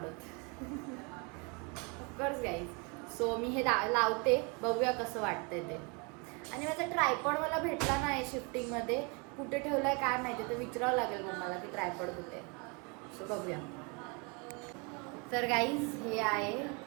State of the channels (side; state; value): left; quieter; 31.9 dB